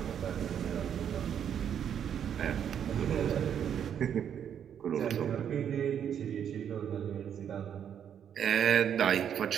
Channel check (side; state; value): left; quieter; 8.8 dB